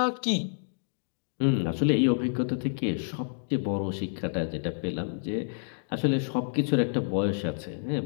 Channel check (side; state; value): right; silent; digital silence